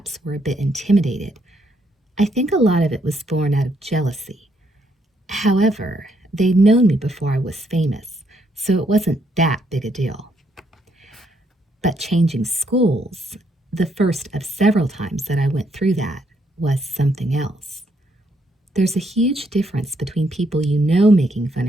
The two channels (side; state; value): both; normal; correlation 0.74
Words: were a bit intimidated. I think a lot of it was born out of jealousy. However, they'd known me before I was famous, so it wasn't that big a deal. But changing schools, the first of several times that I went through that, was something else. There's a huge difference between people you know making fun